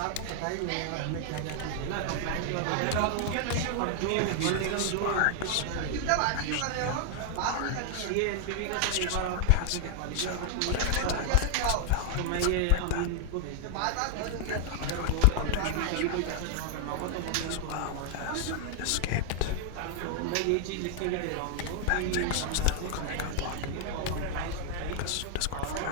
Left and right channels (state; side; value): different; both; correlation 0.00